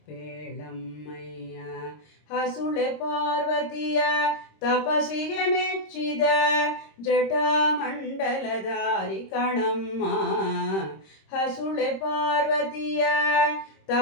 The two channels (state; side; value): late; right; 26 ms